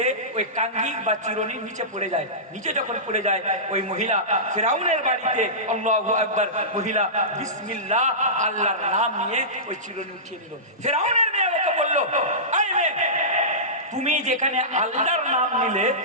ওই কাঙ্গি বা চিরুনি নিচে পড়ে যায়। নিচে যখন পড়ে যায়, ওই মহিলা ফেরাউনের বাড়িতে আল্লাহু আকবার মহিলা বিসমিল্লাহ আল্লাহর নাম নিয়ে ওই চিরুনি উঠিয়ে নিল। ফেরাউনের মেয়ে ওকে বলল, এই মেয়ে, তুমি যেখানে আল্লাহর নাম নিলে,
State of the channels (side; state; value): both; normal; correlation -0.19